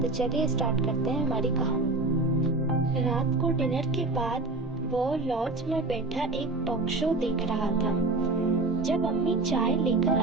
तो चलिए स्टार्ट करते हैं हमारी कहानी। रात को डिनर के बाद वो लॉज में बैठा एक टॉक शो देख रहा था जब अम्मी चाय लेकर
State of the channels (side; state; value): left; quieter; 3.2 dB